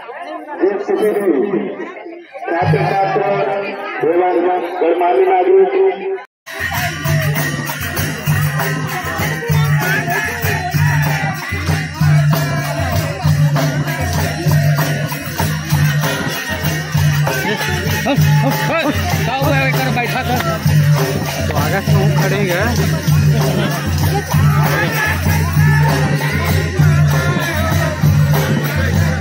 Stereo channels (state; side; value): identical; both; correlation 1.00